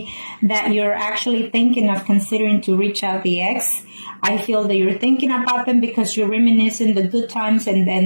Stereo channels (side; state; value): both; inverted; correlation -1.00